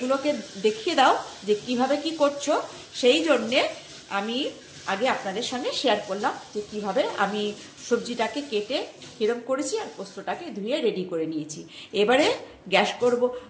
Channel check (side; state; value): both; identical; correlation 1.00